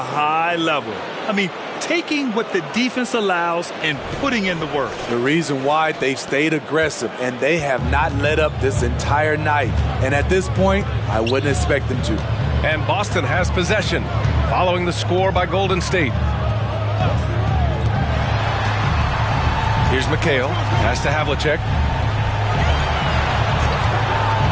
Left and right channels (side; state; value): both; identical; correlation 1.00